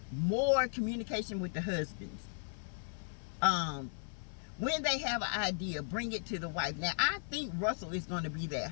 more communication with the husbands. When they have an idea, bring it to the wife. Now, I think Russell is going to be that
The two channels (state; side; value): silent; right; 53 dB below the other